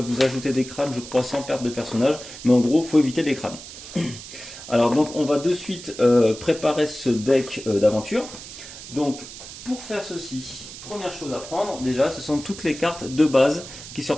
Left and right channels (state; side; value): noise; right; hiss, 13 dB below the sound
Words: vous ajouter des crânes, je crois, sans perte de personnages. Mais en gros, il faut éviter les crânes. Alors donc on va de suite préparer ce deck d'aventure. Donc pour faire ceci, première chose à prendre déjà, ce sont toutes les cartes de base qui se